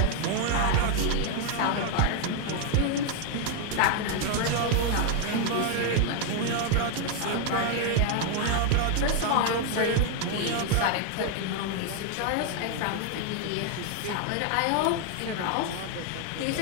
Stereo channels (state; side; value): different; both; correlation 0.01